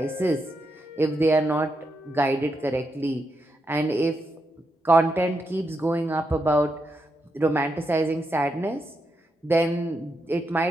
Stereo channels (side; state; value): both; normal; correlation 0.83